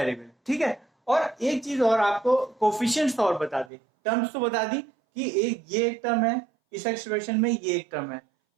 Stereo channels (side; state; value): left; drops out; at 3.7 s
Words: ठीक है। और एक चीज और आपको कोफिशिएंट्स और बता दी, टर्म्स तो बता दी कि ये एक टर्म है, इस एक्सप्रेशन में ये एक टर्म है।